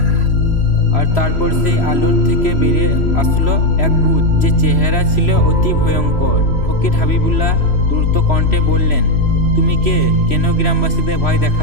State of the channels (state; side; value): late; right; 3.0 ms